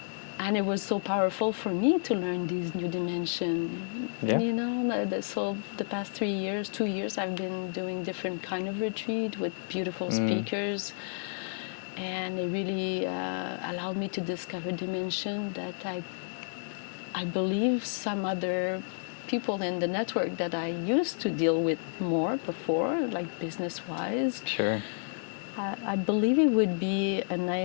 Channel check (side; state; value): right; silent; digital silence